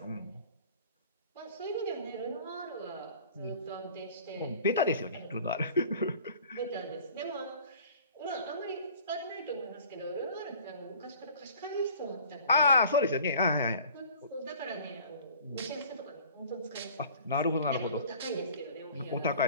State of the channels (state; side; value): inverted; both; correlation -0.47